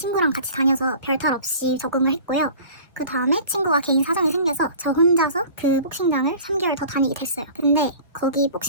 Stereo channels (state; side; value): inverted; both; correlation -0.43